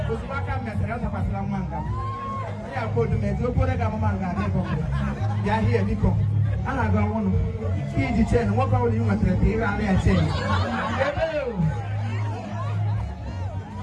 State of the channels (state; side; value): identical; both; correlation 1.00